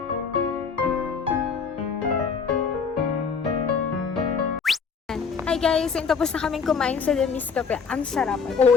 Hi guys, so tapos na kaming kumain sa The Miss Cafe. Ang sarap.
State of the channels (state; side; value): quieter; right; 5.7 dB